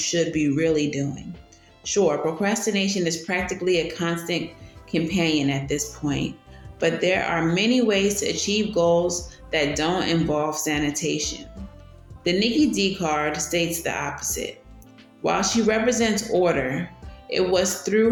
be really doing. Sure, procrastination is practically a constant companion at this point, but there are many ways to achieve goals that don't involve sanitation. The Nikki D card states the opposite. While she represents order, it was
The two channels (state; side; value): identical; both; correlation 1.00